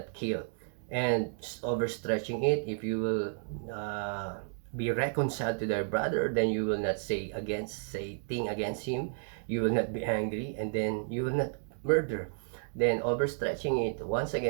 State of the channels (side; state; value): left; silent; digital silence